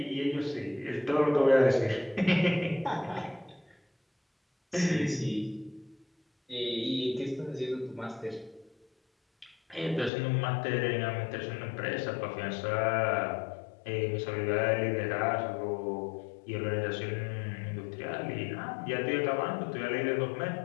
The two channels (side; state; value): right; drops out; at 10.1 s